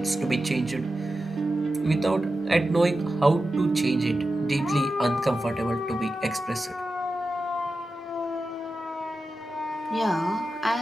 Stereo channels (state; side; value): normal; both; correlation 0.92